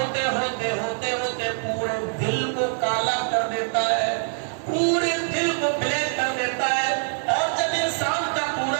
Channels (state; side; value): silent; left; digital silence